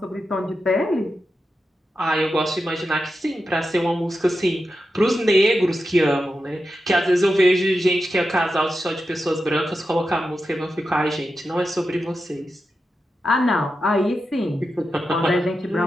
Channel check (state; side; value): normal; both; correlation 0.89